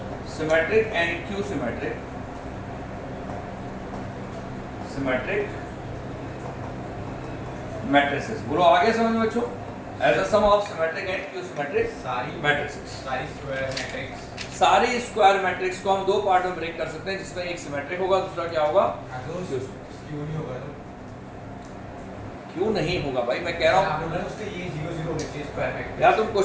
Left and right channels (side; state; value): both; identical; correlation 1.00